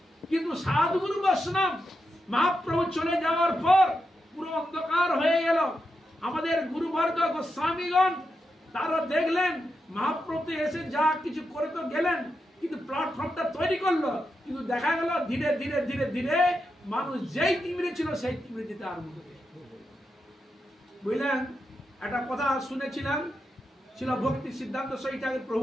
কিন্তু সাধুগুরু বৈষ্ণব মহাপ্রভু চলে যাওয়ার পর পুরো অন্ধকার হয়ে গেল। আমাদের গুরুবর্গ গোস্বামীগণ তারা দেখলেন মহাপ্রভু এসে যা কিছু করে তো গেলেন, কিন্তু প্ল্যাটফর্মটা তৈরি করলো, কিন্তু দেখা গেল ধীরে ধীরে ধীরে ধীরে মানুষ যেই তিমিরে ছিল সেই তিমিরে যেতে আরম্ভ করে। বুঝলেন? একটা কথা শুনেছিলাম, ছিল ভক্তি সিদ্ধান্ত সহিত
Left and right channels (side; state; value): both; normal; correlation 0.87